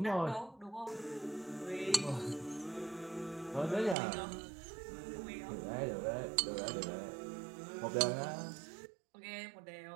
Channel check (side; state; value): left; drops out; at 4.0 s